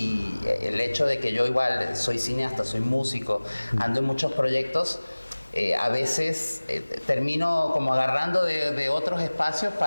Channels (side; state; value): both; inverted; correlation -1.00